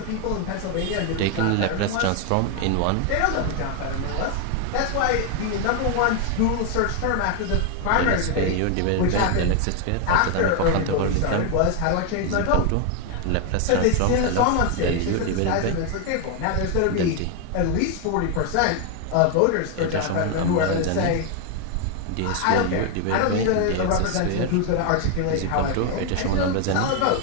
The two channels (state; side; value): different; both; correlation 0.01